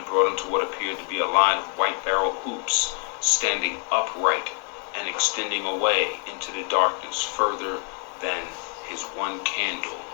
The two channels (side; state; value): right; quieter; 39.4 dB